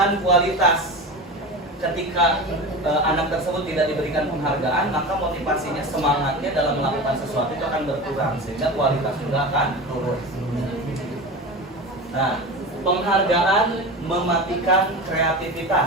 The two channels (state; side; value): normal; both; correlation 0.29